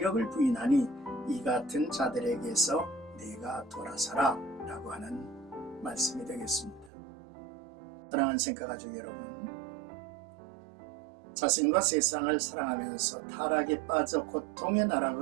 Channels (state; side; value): drops out; left; at 6.9 s